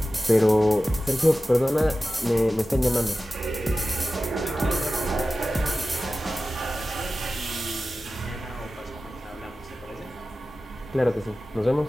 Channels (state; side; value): normal; both; correlation 0.95